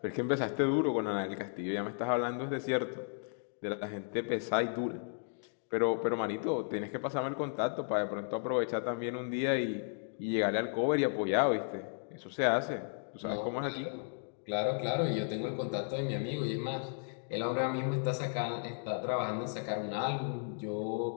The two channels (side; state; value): right; silent; digital silence